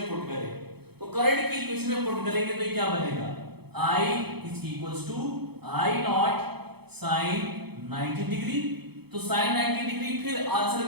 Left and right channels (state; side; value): late; left; 0.97 ms